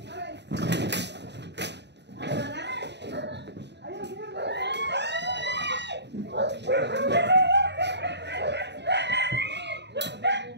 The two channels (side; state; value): left; late; 0.50 ms